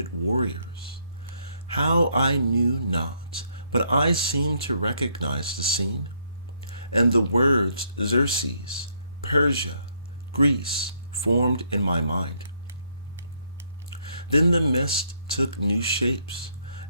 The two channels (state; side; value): inverted; both; correlation -0.71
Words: warriors. How I knew not, but I seemed to recognize the scene, and the words Xerxes, Persia, Greece formed in my mind. Then the mist took new shapes,